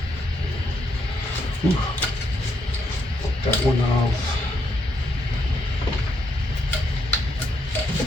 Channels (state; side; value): normal; both; correlation 0.76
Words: Ooh. That one off.